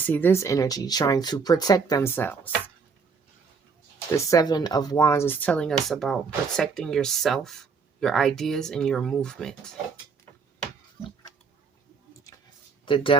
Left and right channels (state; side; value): quieter; left; 5.2 dB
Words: this energy trying to protect themselves. The 7 of Wands is telling us about protecting yourself, your ideas, and your movement. The